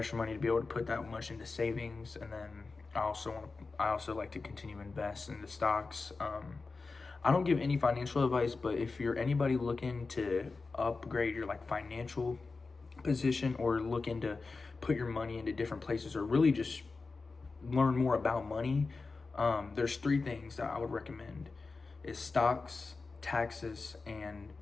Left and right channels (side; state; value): right; quieter; 4.0 dB